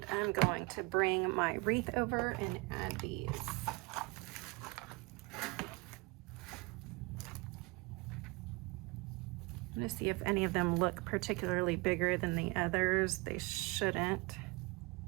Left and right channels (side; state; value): left; quieter; 25.2 dB